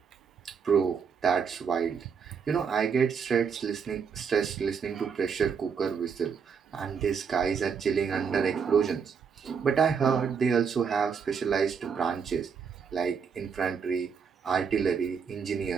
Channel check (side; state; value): left; quieter; 6.4 dB